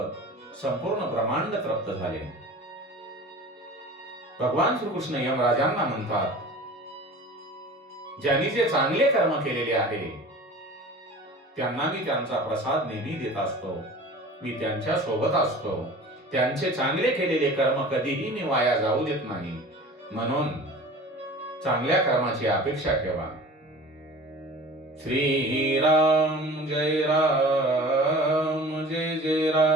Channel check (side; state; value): both; normal; correlation 0.40